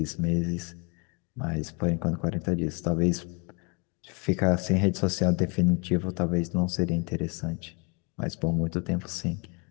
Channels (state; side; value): quieter; right; 31.4 dB